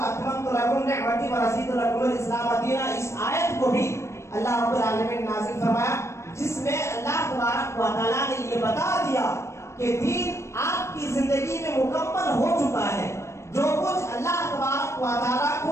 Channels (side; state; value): right; late; 0.13 ms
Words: لکم نعمتی ورضیت لکم الاسلام دینا، اس آیت کو بھی اللہ رب العالمین نے نازل فرمایا، جس میں اللہ تبارک و تعالیٰ نے یہ بتا دیا کہ دین آپ کی زندگی میں مکمل ہو چکا ہے۔ جو کچھ اللہ تبارک و تعالیٰ